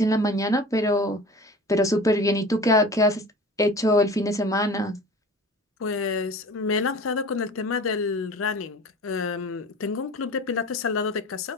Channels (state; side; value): normal; both; correlation 0.39